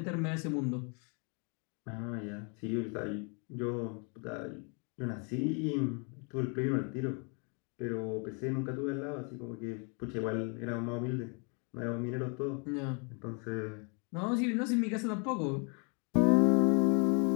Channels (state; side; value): quieter; right; 36.0 dB